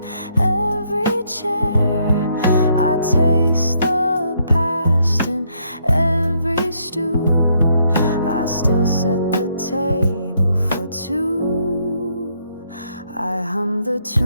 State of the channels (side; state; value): both; inverted; correlation -0.72